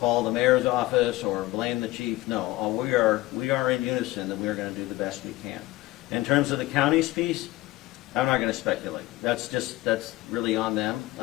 the mayor's office or blame the chief. No, we are in unison that we are going to do the best we can. In terms of the county's piece, I'm not going to speculate. That's really on them.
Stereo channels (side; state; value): right; quieter; 18.5 dB